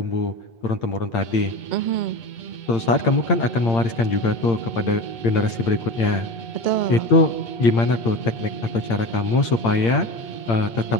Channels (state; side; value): late; right; 8.8 ms